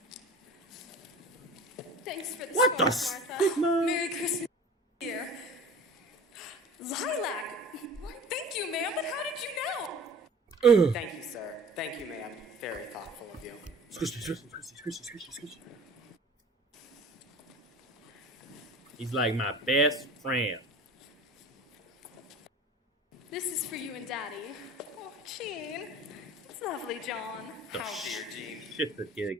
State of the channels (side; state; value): both; normal; correlation 0.42